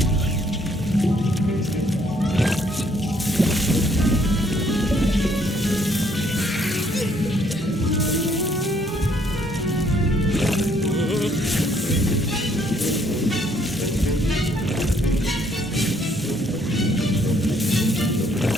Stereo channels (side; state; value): both; normal; correlation 0.66